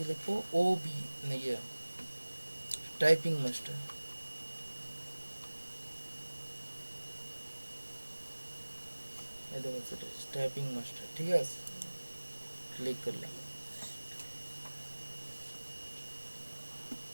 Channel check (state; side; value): inverted; both; correlation -1.00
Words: লিখবো ও বি ইয়ে টাইপিং মাস্টার, এই দেখো সেটা টাইপিং মাস্টার, ঠিক আছে, ক্লিক করলাম,